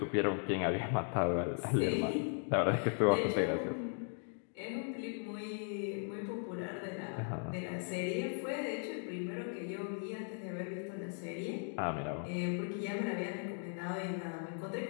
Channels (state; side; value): silent; right; 53 dB below the other